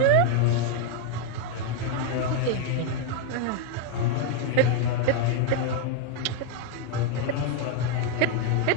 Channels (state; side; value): different; both; correlation 0.00